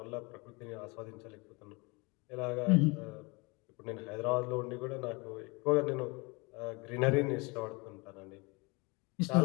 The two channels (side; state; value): right; quieter; 27.3 dB